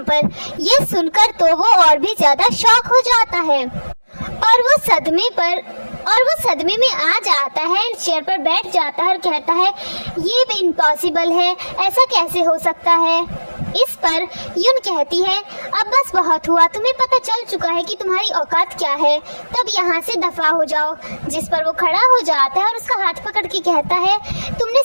पर। ये सुनकर तो वो और भी ज्यादा शॉक हो जाता है और वो सदमे में आ जाता है, चेयर पर बैठ जाता है और कहता है ये भी इम्पॉसिबल है, ऐसा कैसे हो सकता है। इस पर यून कहती है अब बस बहुत हुआ, तुम्हें पता चल चुका है कि तुम्हारी औकात क्या है, तब यहाँ से दफा हो जाओ। जिस पर वो खड़ा हो जाता है और उसका हाथ पकड़ के कहता है तुमने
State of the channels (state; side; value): inverted; both; correlation -1.00